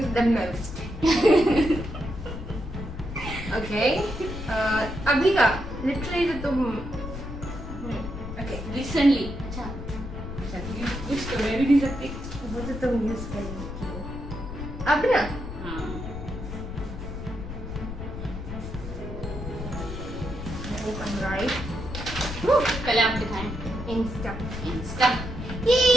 the most? Okay अभी का लिटरली तो तुम ओके रिसेंटली अच्छा अच्छा कुछ तो मैं भी नहीं सकती। वो तो तुम यूज कर रही हो अब ना। हाँ राइट, पहले आप दिखाएं। इंस्टा। इंस्टा। ये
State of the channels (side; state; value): left; noise; rumble, 8 dB below the sound